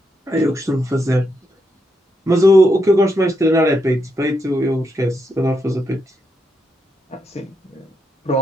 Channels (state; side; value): normal; both; correlation 0.81